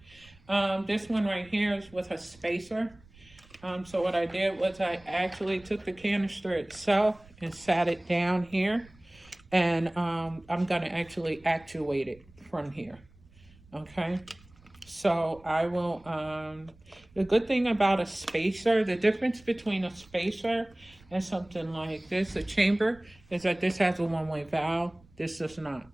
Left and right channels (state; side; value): noise; right; rumble, 26 dB below the sound